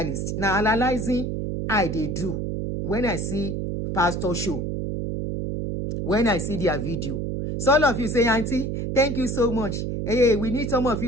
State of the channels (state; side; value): noise; right; hum, 3 dB below the sound